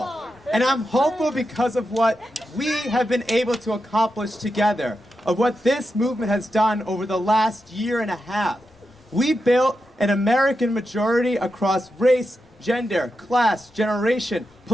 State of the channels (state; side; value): normal; both; correlation 0.88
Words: And I'm hopeful because of what we have been able to accomplish together, of what this movement has done over the last year and a half. We built an American majority across race, gender, class, generation,